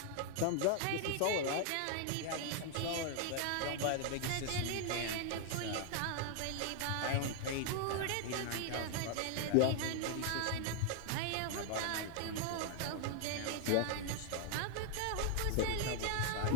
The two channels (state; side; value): different; both; correlation 0.00